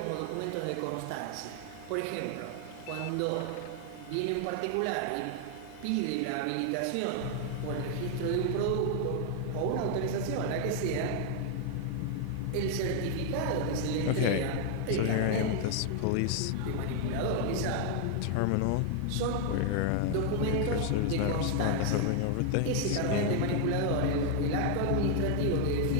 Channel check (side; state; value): both; different; correlation 0.00